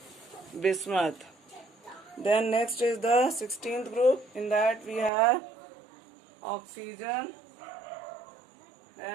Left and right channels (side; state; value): left; drops out; at 5.1 s